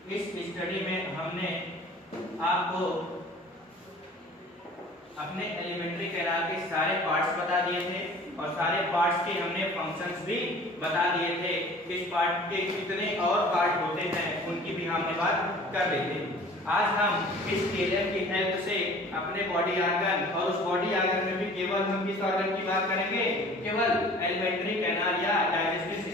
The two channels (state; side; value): normal; both; correlation 0.47